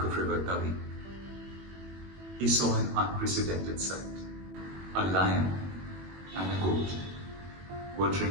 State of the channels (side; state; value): left; late; 21 ms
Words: of river Tavi, he saw an unprecedented sight. A lion and a goat were